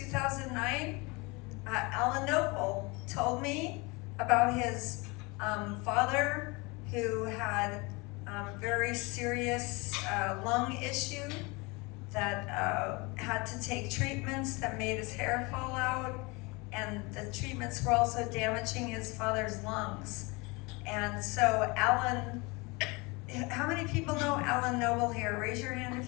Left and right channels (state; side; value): quieter; right; 26.5 dB